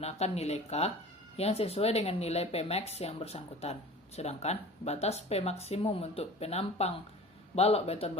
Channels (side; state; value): both; normal; correlation 0.41